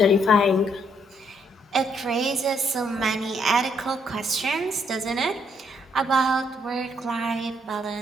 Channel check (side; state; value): both; normal; correlation 0.71